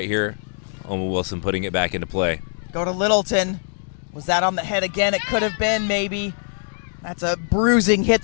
here. Omen Wilson putting it back into play. Go to Littleton. Was that on the head again? It could have been, maybe. That's a bruising hit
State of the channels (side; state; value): right; silent; digital silence